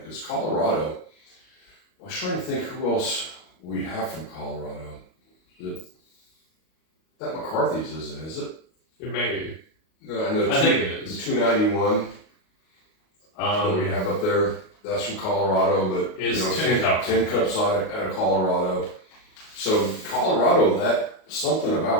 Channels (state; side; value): late; right; 38 ms